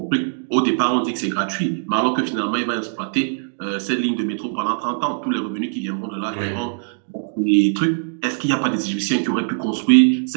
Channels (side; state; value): left; silent; digital silence